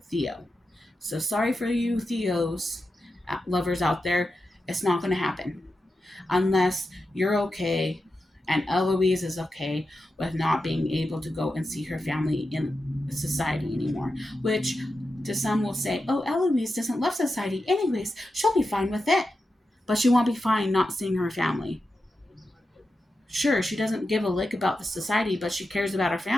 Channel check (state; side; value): normal; both; correlation 0.90